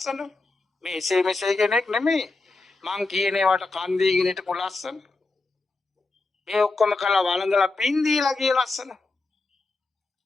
මේ එසේ මෙසේ කෙනෙක් නෙමෙයි. මං කියන ඒවාට කන් දීගෙන හිටපු ලස්සන. මේ ඔක්කොම කළා වළඳලා පින් දීලා ගිය ලස්සන.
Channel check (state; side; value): quieter; right; 3.5 dB